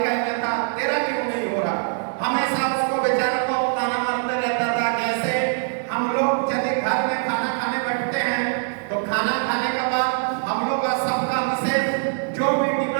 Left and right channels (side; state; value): left; silent; digital silence